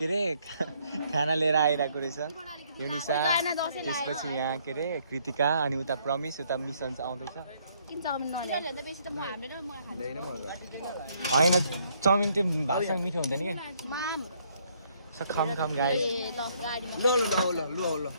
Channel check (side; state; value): both; inverted; correlation -0.68